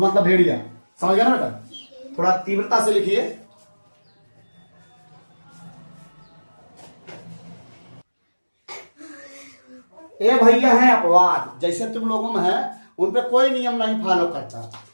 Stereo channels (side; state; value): both; inverted; correlation -1.00